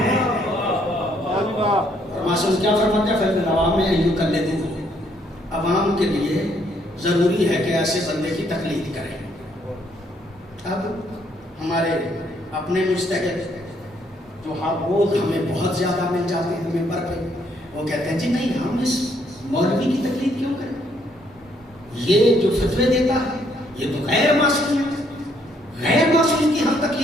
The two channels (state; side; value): normal; both; correlation 0.69